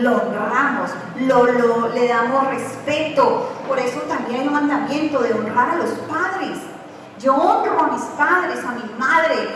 honramos, le damos respeto. Por eso también hay un mandamiento de honrar a los padres. Yo honro a mis padres, a mi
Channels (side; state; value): both; identical; correlation 1.00